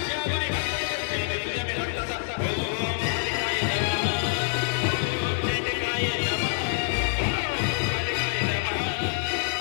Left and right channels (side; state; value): right; silent; digital silence